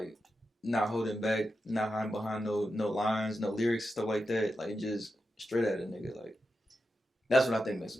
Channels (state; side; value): normal; both; correlation 0.89